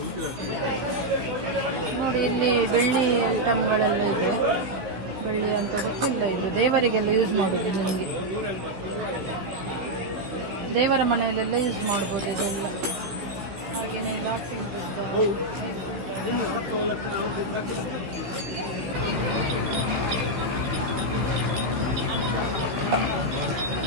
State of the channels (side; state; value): left; late; 16 ms